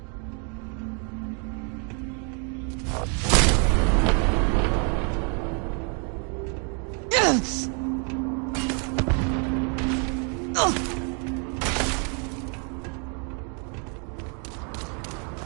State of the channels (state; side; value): quieter; left; 38.3 dB